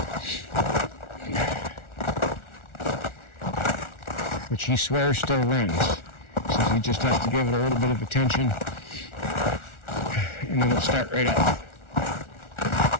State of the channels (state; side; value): late; right; 1.4 ms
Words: Which he swears still runs. So he just has to give it a little bit of attention and then it'll start right up.